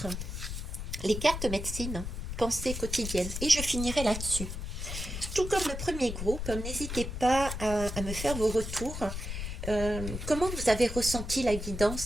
Les cartes médecine, pensée quotidienne. Et je finirai là-dessus. Tout comme le premier groupe, n'hésitez pas à me faire vos retours. Comment vous avez ressenti la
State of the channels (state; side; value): noise; left; rumble, 6 dB below the sound